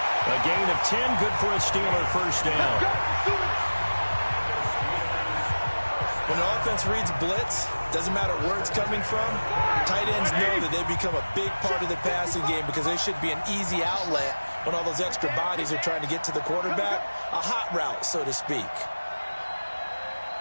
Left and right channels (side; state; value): both; inverted; correlation -1.00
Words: A gain of 10. Good for a Steeler first down. When the offense reads blitz, doesn't matter where it's coming from, tight ends know that they become a big part of the passing game because they should be an easy outlet when all those extra bodies are trying to get to the quarterback. A hot route, so to speak.